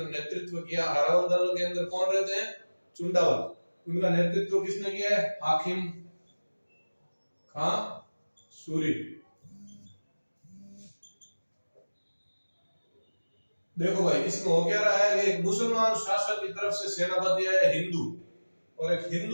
नेतृत्व किया। हरावल दल के अंदर कौन रहते हैं? चुंडावल। उनका नेतृत्व किसने किया है? हाकिम खां सूरी। देखो भाई, इसमें हो क्या रहा है कि एक मुसलमान शासक की तरफ से सेनापति है हिंदू, और एक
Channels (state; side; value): inverted; both; correlation -1.00